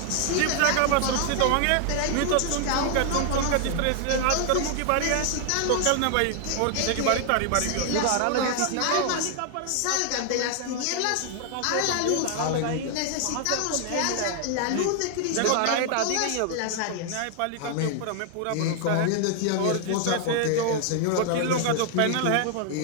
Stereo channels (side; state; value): both; different; correlation 0.00